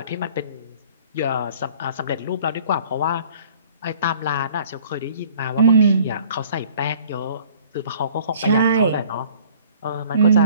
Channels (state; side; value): inverted; both; correlation -0.53